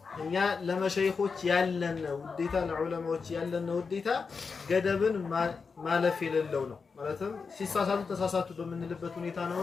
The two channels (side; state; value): right; quieter; 5.1 dB